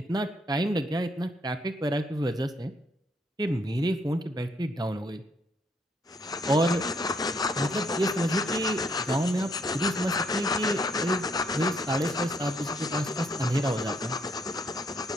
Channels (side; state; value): both; normal; correlation 0.71